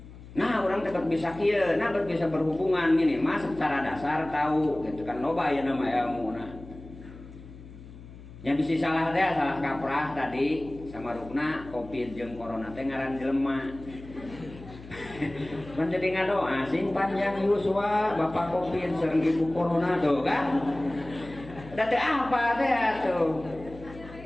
Nah, orang tetap bisa kieu, nah bisa berhubungan minimal secara dasar tahu gitu kan loba ya nama ilmu nah. Yang bisa salah teh salah kaprah tadi sama rukna Covid jeung corona teh ngaran jelema. Pan jadi ngadoa sing panjang yuswa Bapak Covid sareng Ibu Corona tuh kan. Da teh apa teh atuh.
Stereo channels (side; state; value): left; noise; hum, 17 dB below the sound